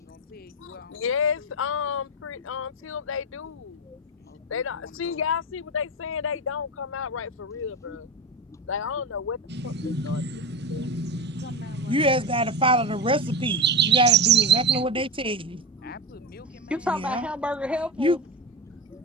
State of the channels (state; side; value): normal; both; correlation 0.22